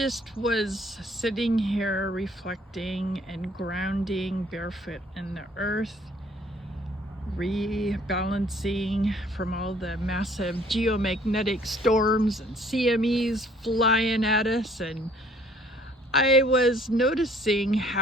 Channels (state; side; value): normal; both; correlation 0.59